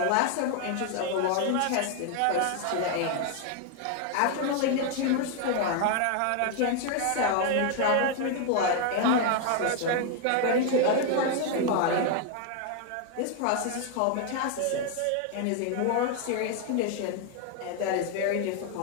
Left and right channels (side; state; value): both; different; correlation 0.01